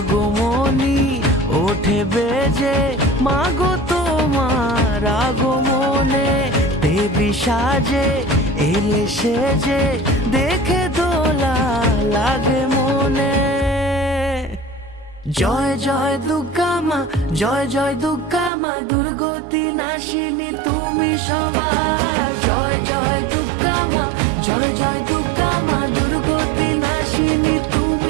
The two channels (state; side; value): drops out; left; at 18.5 s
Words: ওঠে বেজে, মাগো তোমার আগমনে দেবী সাজে এলে সেজে, দেখে দোলা লাগে মনে। জয় জয় দুর্গা মা, জয় জয় দুর্গা মা, দুর্গতি নাশিনী তুমি সবার। জয় জয় দুর্গা মা, জয় জয় দুর্গা মা, দুর্গতি নাশিনী